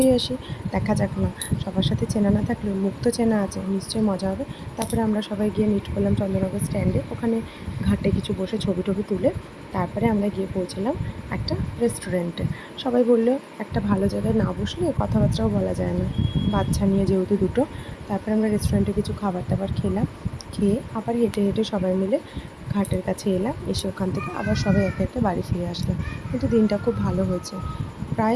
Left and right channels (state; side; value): identical; both; correlation 1.00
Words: আসি, দেখা যাক না, সবার সাথে চেনা না থাকলেও মুখ তো চেনা আছে, নিশ্চয়ই মজা হবে। তারপরে আমরা সবাই গিয়ে মিট করলাম চন্দননগর স্ট্যান্ডে, ওখানে ঘাটে কিছু বসে ছবি টবি তুলে তারপরে আমরা গিয়ে পৌঁছলাম একটা রেস্টুরেন্টে। সবাই বললো একটা ভালো জায়গায় না বসলে কথাবার্তাও বলা যায় না, বাচ্চা নিয়ে যেহেতু দুটো। তারপরে আমরা রেস্টুরেন্টে কিছু খাবার দাবার খেলাম, খেয়ে আবার হেঁটে হেঁটে সবাই মিলে ঘাটের কাছে এলাম, এসে ওখান থেকে আবার সবাই একে একে বাড়ি ফিরে আসলাম। কিন্তু দিনটা খুব ভালো হয়েছে,